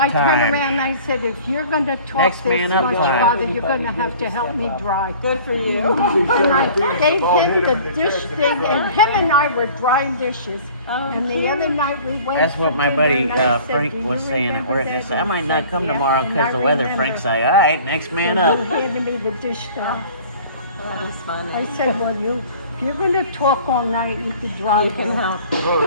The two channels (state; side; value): inverted; both; correlation -0.47